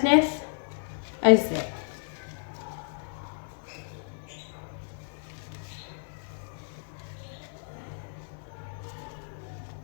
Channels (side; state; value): right; silent; digital silence